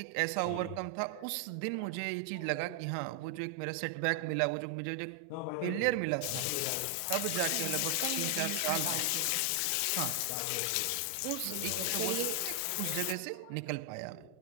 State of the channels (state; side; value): different; both; correlation 0.00